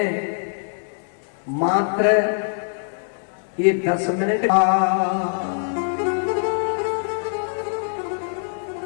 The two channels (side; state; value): right; silent; digital silence